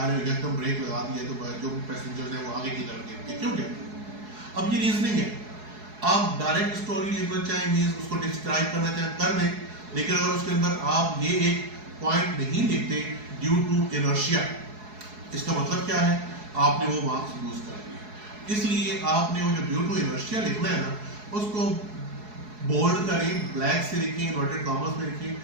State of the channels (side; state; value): left; late; 4.7 ms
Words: रहे हैं, एकदम ब्रेक लगा दिया तो जो पैसेंजर्स हैं वो आगे की तरफ गिरते क्यों गिरते? अब ये रीजनिंग है। आप डायरेक्ट स्टोरी लिखना चाहें, मीन्स उसको डिस्क्राइब करना चाहें कर दें, लेकिन अगर उसके अंदर आप ये एक पॉइंट नहीं लिखते ड्यू टू इनर्शिया, इसका मतलब क्या है? आपने वो मार्क्स लूज कर दिए। इसलिए आपने वो जो ड्यू टू इनर्शिया लिखना है ना, उसको बोल्ड करें, ब्लैक से लिखें, इन्वर्टेड कॉमर्स में लिखें,